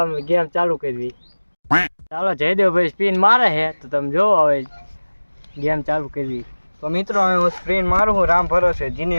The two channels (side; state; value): both; inverted; correlation -1.00